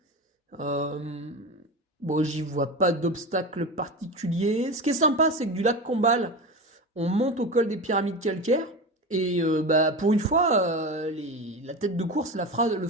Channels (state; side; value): normal; both; correlation 0.25